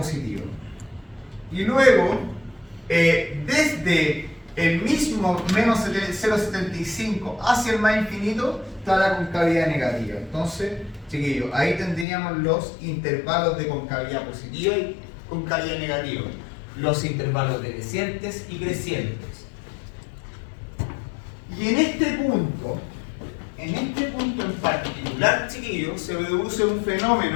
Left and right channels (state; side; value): drops out; right; at 12.1 s